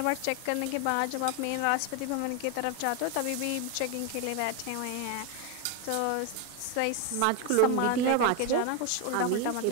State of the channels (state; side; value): different; both; correlation 0.01